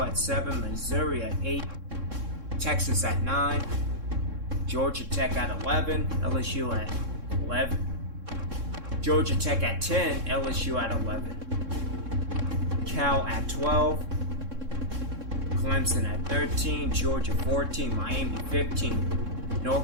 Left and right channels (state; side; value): late; left; 3.6 ms